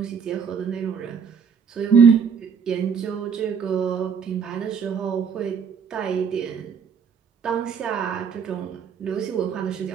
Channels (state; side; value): quieter; left; 6.6 dB